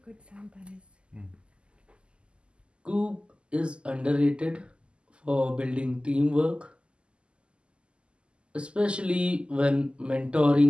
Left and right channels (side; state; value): left; late; 0.052 ms